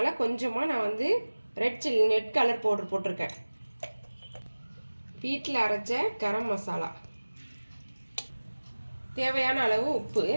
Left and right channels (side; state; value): both; inverted; correlation -1.00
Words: கொஞ்சமாக நான் ரெட் கலர் பவுடர் போட்டிருக்கேன். வீட்டில் அரைச்ச கரம் மசாலா, தேவையான அளவு உப்பு.